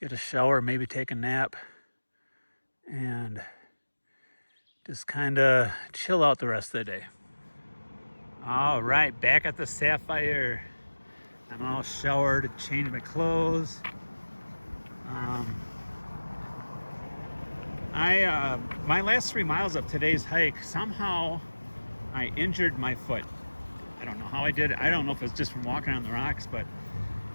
a shower, maybe take a nap, and just kind of chill out the rest of the day. All right, back at the Sapphire. I'm all showered, changed my clothes. My last 3 miles of today's hike, somehow I injured my foot. I don't know how I did it. I don't know if it's just from walking on the rocks, but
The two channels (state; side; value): inverted; both; correlation -1.00